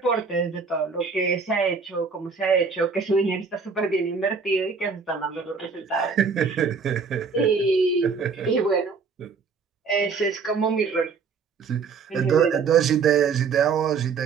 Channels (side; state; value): left; quieter; 5.3 dB